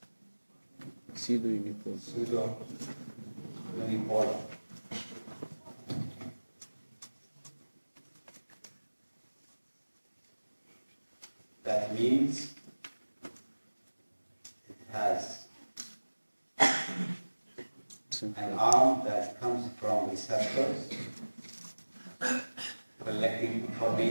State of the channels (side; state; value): both; inverted; correlation -1.00